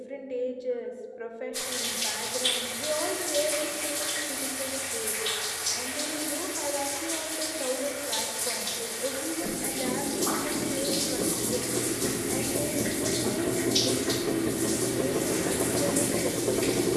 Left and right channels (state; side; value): identical; both; correlation 1.00